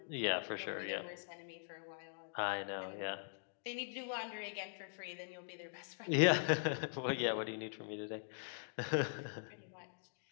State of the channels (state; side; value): silent; right; digital silence